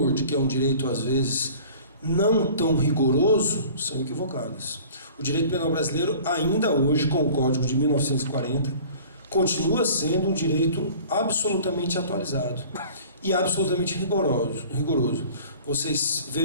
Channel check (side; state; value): both; inverted; correlation -0.46